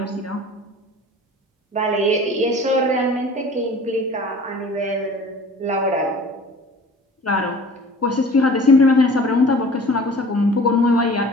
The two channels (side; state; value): both; normal; correlation 0.45